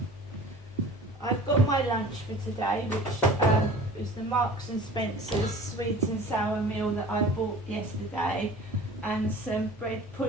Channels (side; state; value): both; normal; correlation 0.43